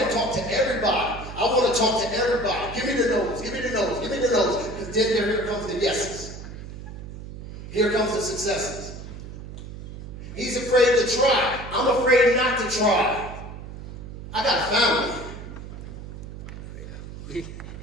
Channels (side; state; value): right; noise; hum, 11 dB below the sound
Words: talk to everybody. I want to talk to everybody. Give me the no's, give me the no's, give me the no's. Because then here comes the yeses. Here comes the successes. He's afraid to try. I'm afraid not to try. I got a family.